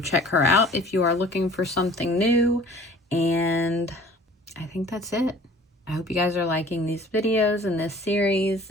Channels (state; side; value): normal; both; correlation 0.49